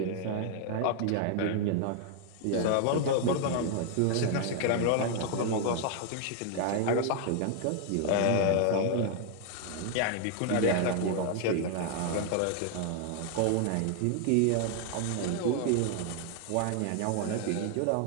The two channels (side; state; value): both; different; correlation 0.00